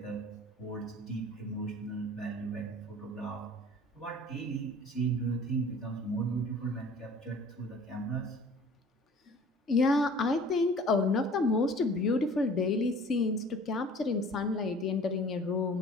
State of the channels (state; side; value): normal; both; correlation 0.48